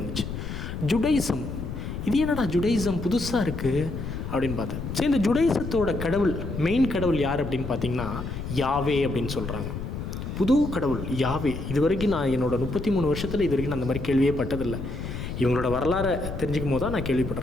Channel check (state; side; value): noise; left; rumble, 6 dB below the sound